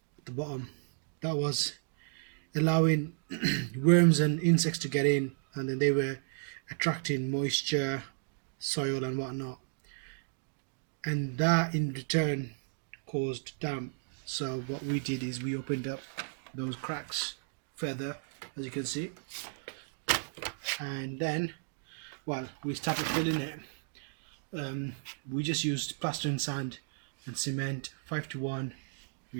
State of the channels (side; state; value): left; silent; digital silence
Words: at the bottom. That was allowing worms and insects to get in, and then they were attracting moisture, soil and whatnot, and that in return caused damp. So what we did is we opened up those cracks further, as you can see, and then we started filling it. We just used plaster and sand and cement, 5:1